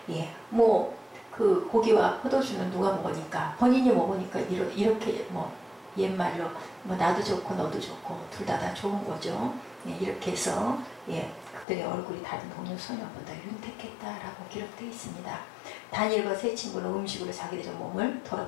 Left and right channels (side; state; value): right; drops out; at 11.7 s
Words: 예, 그 고기와 포도주는 누가 먹으니까 본인이 먹으니까 이렇게 옛말로 나도 좋고 너도 좋고 둘 다 좋은 거죠. 예, 이렇게 해서 예, 그들의 얼굴이 다른 동료 소녀보다 윤택했다라고 기록되어 있습니다. 다니엘과 세 친구는 음식으로 자기들의 몸을